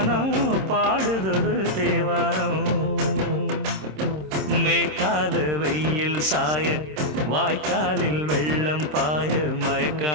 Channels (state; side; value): late; left; 26 ms